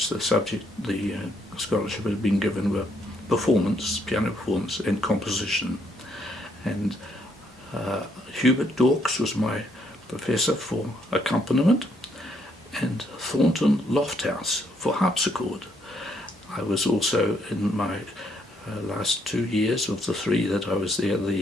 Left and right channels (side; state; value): both; normal; correlation 0.72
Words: the scholarship had been given were performance, piano performance and composition. And Hubert Dawkes was my professor for accompaniment, and Thornton Lofthouse for harpsichord. I was also, in my last 2 years of the 3 that I was there,